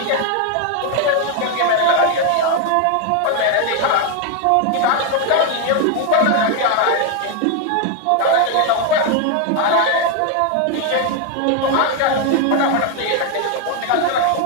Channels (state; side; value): different; both; correlation 0.01